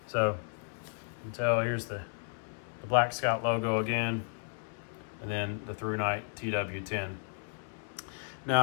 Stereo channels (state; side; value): silent; right; 55 dB below the other